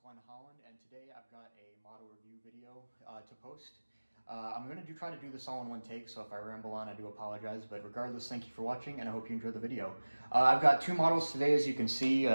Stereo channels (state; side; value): inverted; both; correlation -1.00